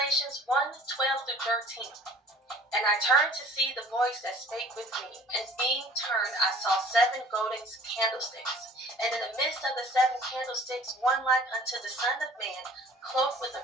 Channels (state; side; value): normal; both; correlation 0.49